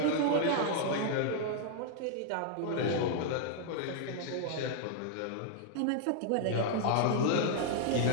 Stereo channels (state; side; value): different; both; correlation -0.01